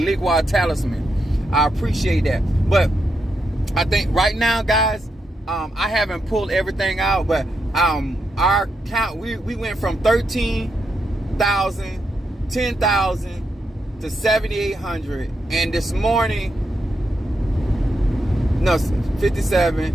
talisman. I appreciate that. But I think right now, guys, I haven't pulled everything out, but our count, we went from 13,000, 10,000 to 7,800, and this morning, no,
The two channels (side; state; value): both; normal; correlation 0.83